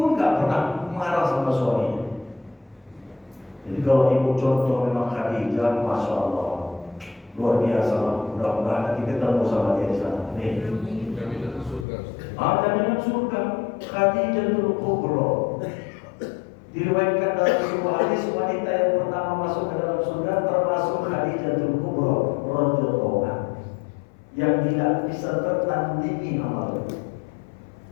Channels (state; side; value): drops out; right; at 11.9 s